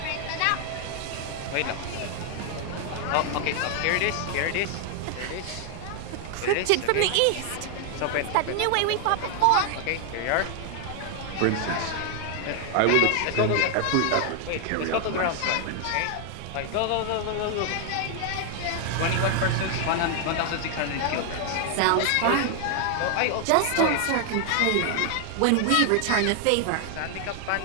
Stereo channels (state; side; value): different; both; correlation 0.00